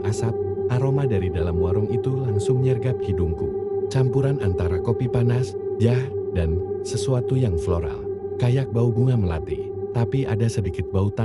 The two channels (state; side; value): identical; both; correlation 1.00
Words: asap. Aroma dari dalam warung itu langsung nyergap hidungku. Campuran antara kopi panas, jah, dan sesuatu yang floral. Kayak bau bunga melati, tapi ada sedikit bau